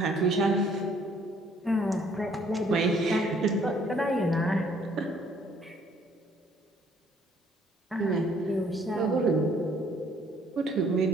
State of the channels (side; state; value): both; normal; correlation 0.62